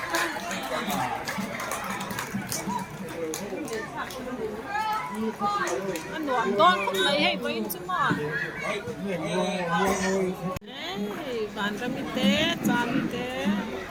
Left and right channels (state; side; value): identical; both; correlation 1.00